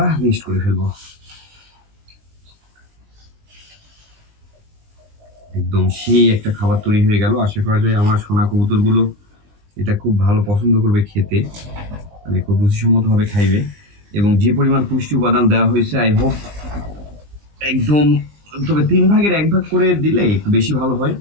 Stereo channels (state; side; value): late; left; 20 ms